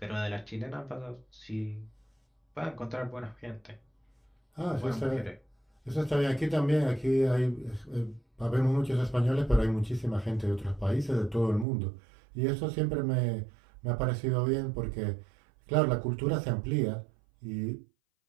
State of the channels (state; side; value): drops out; left; at 11.7 s